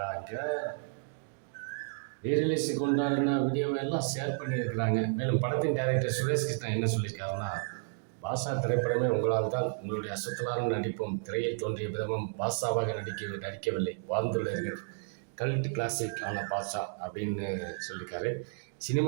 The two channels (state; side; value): silent; left; digital silence